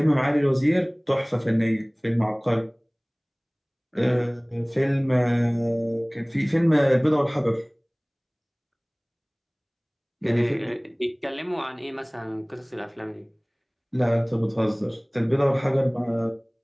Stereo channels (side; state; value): both; identical; correlation 1.00